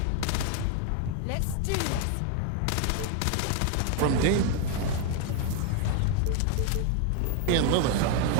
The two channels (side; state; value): both; different; correlation 0.01